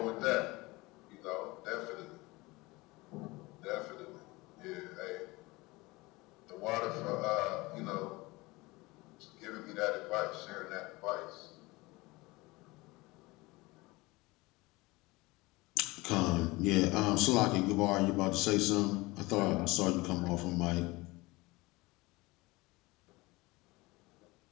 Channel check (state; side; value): quieter; right; 22.4 dB